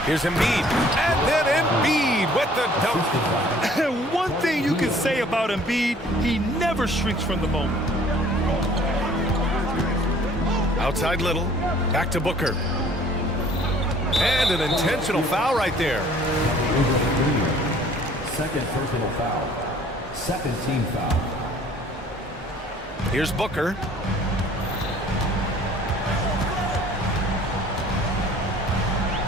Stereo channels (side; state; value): both; normal; correlation 0.54